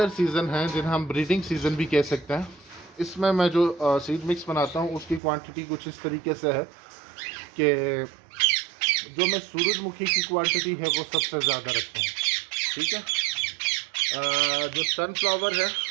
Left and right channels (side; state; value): left; drops out; at 5.2 s